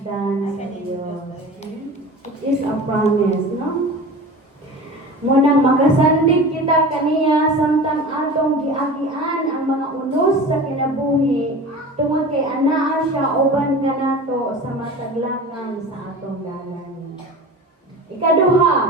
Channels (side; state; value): both; normal; correlation 0.35